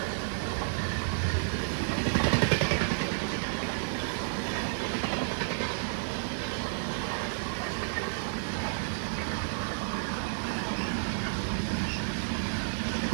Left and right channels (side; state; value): left; silent; digital silence